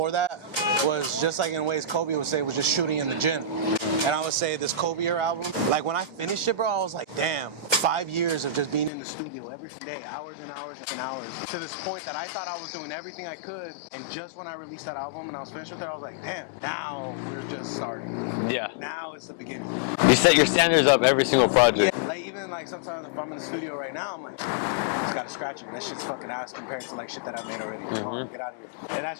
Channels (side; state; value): right; drops out; at 8.9 s